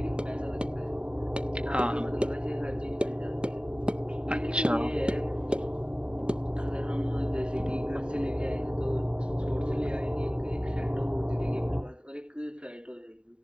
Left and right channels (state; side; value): late; left; 0.051 ms